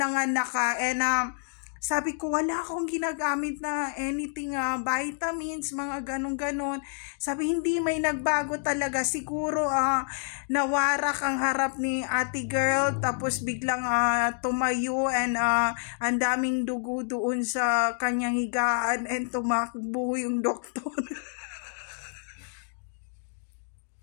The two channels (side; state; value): right; silent; digital silence